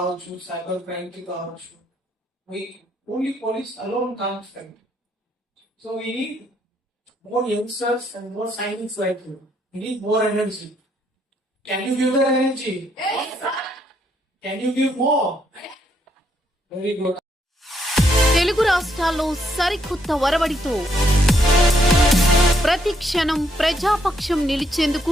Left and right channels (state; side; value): normal; both; correlation 0.73